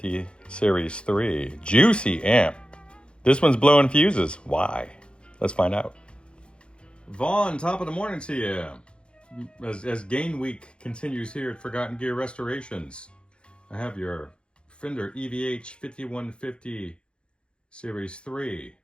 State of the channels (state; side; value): late; right; 0.056 ms